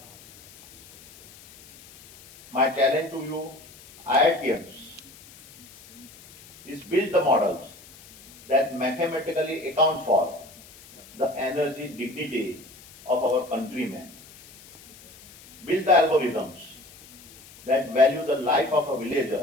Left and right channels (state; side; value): noise; left; hiss, 22 dB below the sound